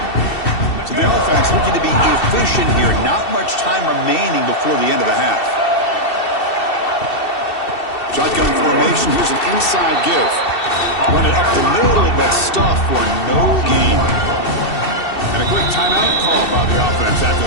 So the offense looking to be efficient here. Not much time remaining before the end of the half. Shotgun formation. Here's an inside give. Run it up the middle, but stuff for no gain. And a quick timeout call by the offense after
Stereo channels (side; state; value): right; late; 2.7 ms